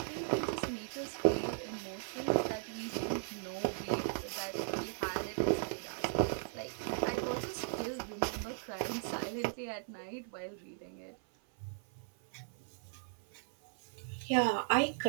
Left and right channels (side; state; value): left; silent; 53 dB below the other